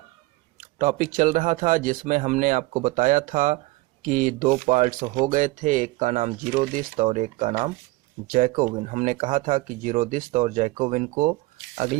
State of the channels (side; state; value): left; quieter; 21.1 dB